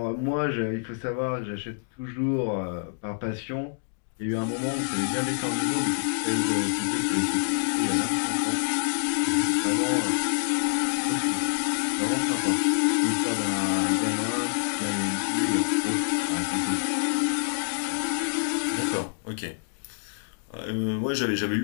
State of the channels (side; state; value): right; silent; digital silence